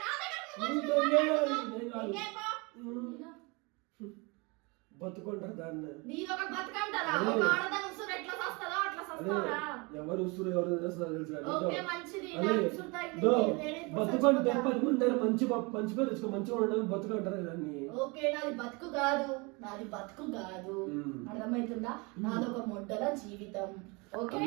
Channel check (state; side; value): quieter; left; 28.2 dB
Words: నా దగ్గర నువ్వు నువ్వు వచ్చి దెంగే. మాట్లాడుతున్నావు. దెంగే పో. బతుకుంటారు దాన్ని. నీదొక బతుకంటారా? అదే. ఒక ఆడదాని ఉసురు ఎట్లా సస్తదో అట్లా సస్తారా? ఎవరు ఉసురు ఎవరు చేస్తారో తెలుసు కానీ ఓకే, మంచిది. అదే. నాకు ఉసురు తగిలింది. దో, లేడీస్ బతుకుంటే చచ్చిపోతారు. 10 మంది దగ్గర మంచి పేరు తెచ్చుకో, మంచిగా ఉండడం బతుకుంటారు దాన్ని. ఓకే, నాది బతుకు కాదు, నాది బతుకు కాదు. అర్థమవుతుందా? నాదొక మొడ్డల జీవితం. ఓకే